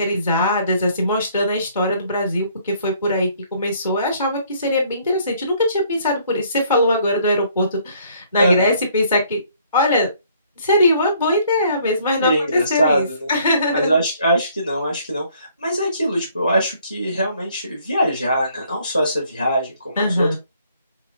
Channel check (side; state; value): both; inverted; correlation -0.62